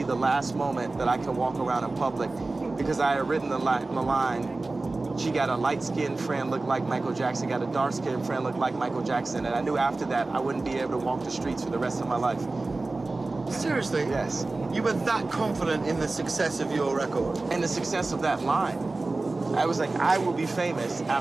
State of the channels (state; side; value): quieter; left; 3.3 dB